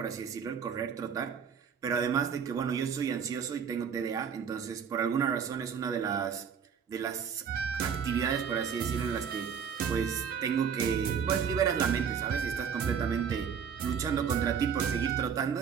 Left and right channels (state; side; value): quieter; left; 7.1 dB